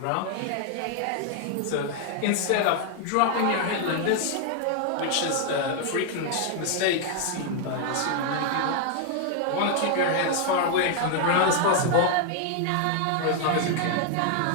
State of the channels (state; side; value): different; both; correlation 0.00